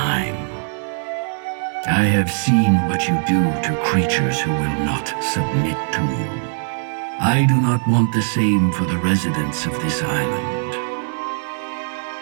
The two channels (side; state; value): left; silent; digital silence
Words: I have seen what you do to creatures who will not submit to you. I do not want the same for the residents of this island.